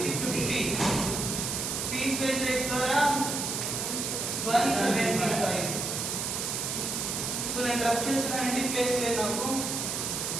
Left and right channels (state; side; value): noise; right; hiss, 2 dB below the sound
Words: పీస్ వేజ్ రేట్ ద్వారా 175. సో నేను రబ్ చేస్తున్నానండి, ప్లేస్ లేదు నాకు.